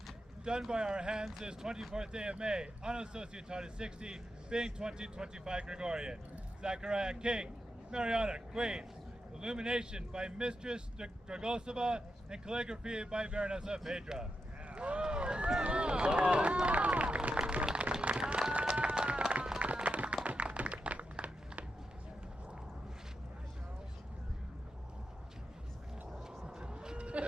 Done by our hands this 24th day of May, on a Societatis 60, being 2025 Gregorian. Zachariah King, Mariana Queen. Illumination by Mistress Dragosova and calligraphy by Baronessa Phaedra.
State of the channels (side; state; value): both; normal; correlation 0.86